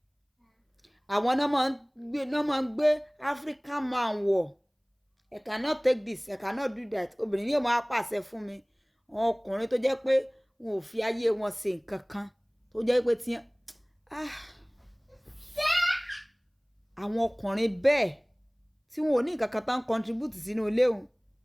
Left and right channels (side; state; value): both; identical; correlation 1.00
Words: àwọn náà máa ń gbé African man wọ̀ I cannot take this I cannot do that obìnrin yóò máa pàṣẹ fún mi àwọn ọkùnrin tó jẹ́ pé wọn ò fi ayé wọn ṣe nǹkan kan tó jẹ́ pé tí àwọn ọkùnrin bẹ́ẹ̀ tí wọn ò ní nǹkan kan tán contribute sínú ilé òun